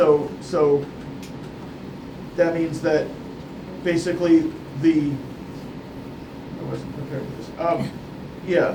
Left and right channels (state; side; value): identical; both; correlation 1.00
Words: that means that basically I wasn't prepared for this.